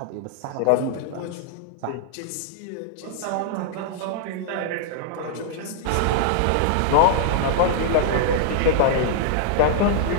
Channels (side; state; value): both; different; correlation -0.01